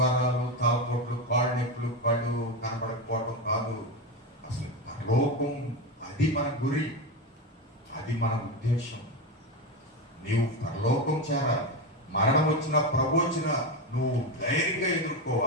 తాపొట్లు, కాళ్ళు నొప్పులు, పళ్ళు కనబడకపోవడం కాదు. అసలు లోకం అది మన గురి, అది మన ఉద్దేశం. నీవు పరలోకం చేరాలి. మరణం వచ్చినా ప్రభు వచ్చినా నువ్వు ధైర్యంగా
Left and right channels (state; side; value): normal; both; correlation 0.15